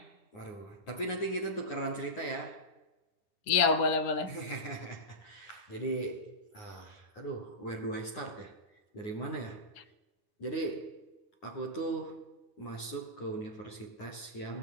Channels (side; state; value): right; late; 9.6 ms